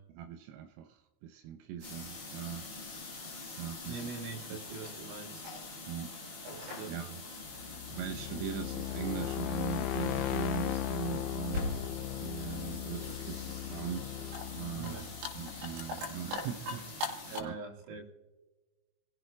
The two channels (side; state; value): left; late; 24 ms